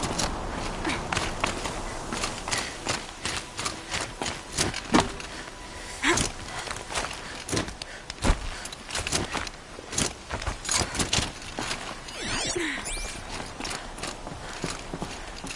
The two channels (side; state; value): both; identical; correlation 1.00